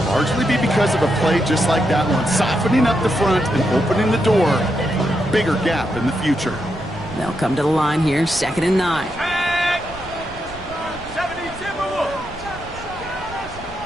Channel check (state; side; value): noise; right; rumble, 17 dB below the sound